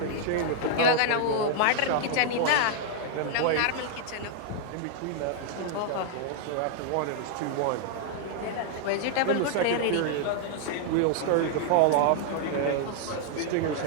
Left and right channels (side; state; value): both; different; correlation -0.01